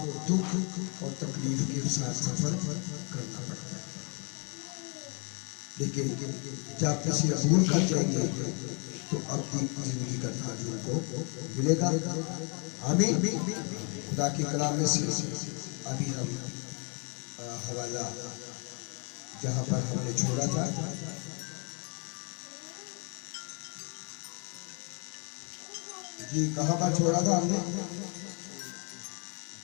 दुख और तकलीफ के साथ सफर करना पड़ता है। लेकिन जब किसी अबूल कर जाएंगे तो अपनी जिंदगी का ताज उनको मिलेगा। आमीन। खुदा की कलाम में से अभी हम हवाला जहाँ पर हमने छोड़ा था, जी कहाँ पर छोड़ा था हमने?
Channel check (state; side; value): quieter; right; 36.2 dB